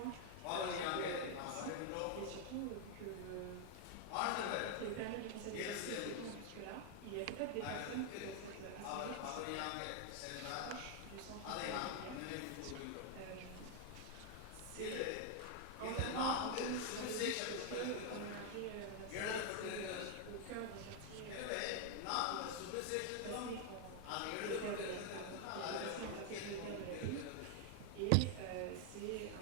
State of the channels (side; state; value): both; different; correlation 0.00